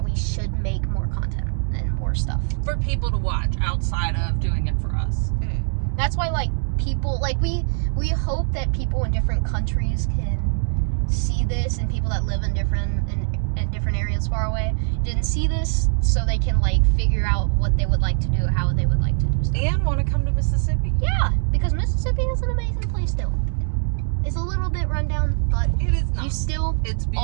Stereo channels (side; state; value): left; silent; digital silence